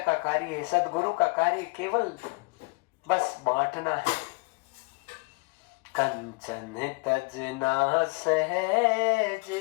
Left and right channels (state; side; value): quieter; right; 29.1 dB